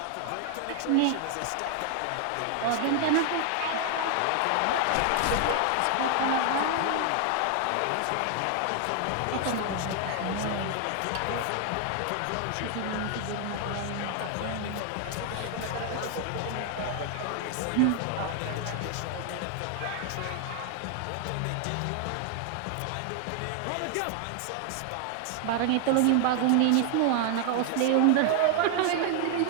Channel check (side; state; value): both; different; correlation 0.00